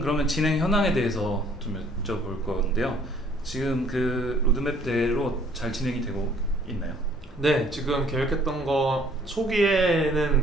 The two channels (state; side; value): normal; both; correlation 0.59